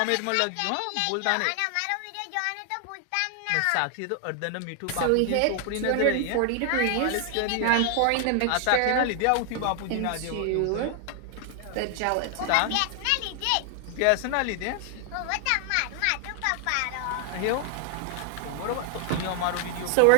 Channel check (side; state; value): both; different; correlation 0.00